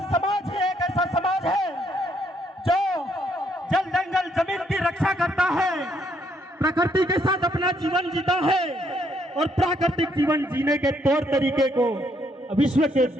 समाज ही एक ऐसा समाज है जो जल जंगल जमीन की रक्षा करता है, प्रकृति के साथ अपना जीवन जीता है, और प्राकृतिक जीवन जीने के तौर तरीके को विश्व के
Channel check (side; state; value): both; normal; correlation 0.71